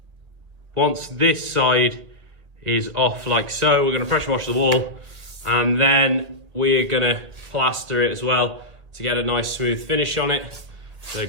Once this side is off like so, we're going to pressure wash the wall, and then we're going to plaster it as well to get a nice smooth finish on it. So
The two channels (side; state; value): left; late; 1.7 ms